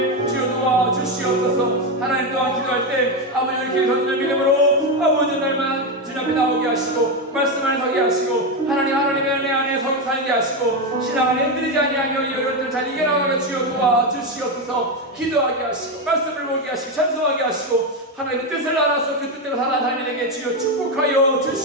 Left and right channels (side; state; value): both; normal; correlation 0.10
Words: 주여 도와주시옵소서. 하나님 또한 기도할 때 아버지 이렇게 던지는 믿음으로 아버지 날만 주님 앞에 나오게 하시고 말씀 안에 서게 하시고 하나님의 은혜 안에 살게 하시고 신앙 안에 흔들리지 아니하며 이 어려움들 잘 이겨나가며 주여 도와주시옵소서. 기도하게 하시고 말씀을 보게 하시고 찬송하게 하시고 하나님의 뜻을 알아서 그 뜻대로 살아가는 자에게 주여 축복하여